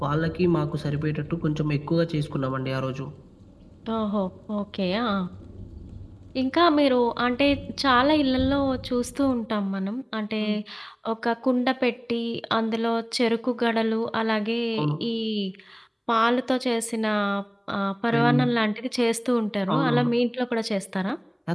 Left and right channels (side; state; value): both; identical; correlation 1.00